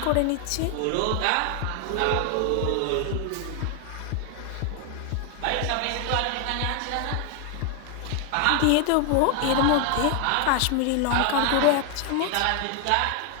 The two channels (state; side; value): different; both; correlation 0.01